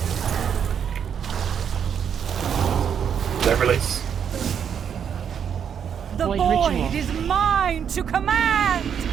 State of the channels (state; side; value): quieter; left; 7.9 dB